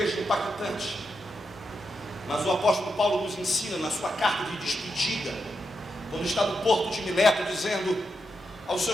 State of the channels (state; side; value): normal; both; correlation 0.85